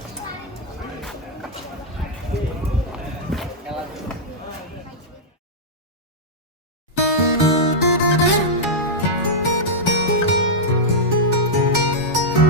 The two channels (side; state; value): both; normal; correlation -0.06